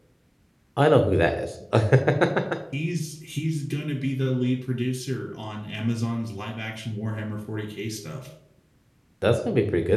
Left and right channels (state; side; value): identical; both; correlation 1.00